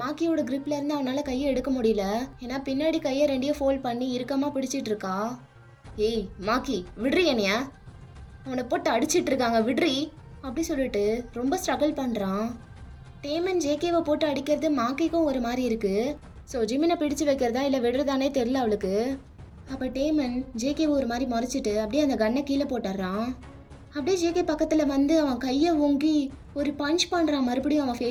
மாக்கியோட gripல இருந்து அவனால் கையை எடுக்க முடியல. ஏன்னா பின்னாடி கையை 2 ஃபோல்ட் பண்ணி இறுக்கமாக பிடிச்சிட்டு இருக்கா. ஏய் மாக்கி விட்றி என்னைய, அவனை போட்டு அடிச்சிட்டு இருக்காங்க விட்றி அப்படி சொல்லிட்டு ரொம்ப ஸ்ட்ரகிள் பண்ணுறான். டேமன் ஜேகேவை போட்டு அடிக்கிறது மாக்கிக்கும் ஒரு மாதிரி இருக்கு. ஸோ ஜிமினை பிடிச்சு வைக்கிறதா இல்லை விடுறதானே தெரில அவளுக்கு. அப்போ டேமன் ஜேகேவை ஒரு மாதிரி முறைச்சிட்டு அப்படியே அந்த கன்னை கீழே போட்டுடுறான். அப்படியே ஜேகே பக்கத்தில் வந்து அவன் கையை ஓங்கி ஒரு பஞ்ச் பண்ணுறான் மறுபடியும் அவன்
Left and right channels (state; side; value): identical; both; correlation 1.00